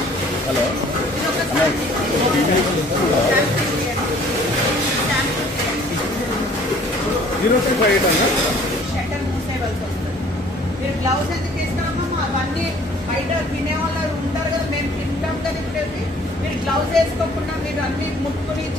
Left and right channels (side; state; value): both; normal; correlation 0.55